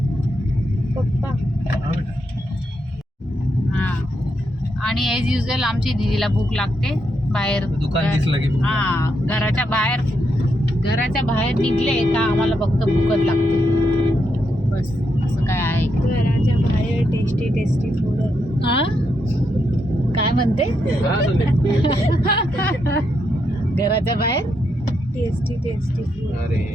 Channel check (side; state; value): both; normal; correlation 0.81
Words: पप्पा. हां आणि ॲज युजल आमची दीदीला भूक लागते. बाहेर दुकान दिसलं की भूक हां घराच्या बाहेर निघले का आम्हाला फक्त भूकच लागते. बस असं काय आहे. घराच्या बाहेर टेस्टी फूड. हां काय म्हणते? घराच्या बाहेर टेस्टी फूड. अरे